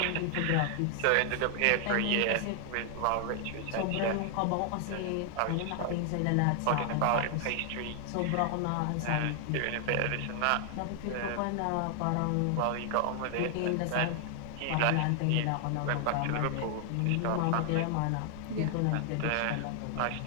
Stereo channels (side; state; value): both; different; correlation 0.00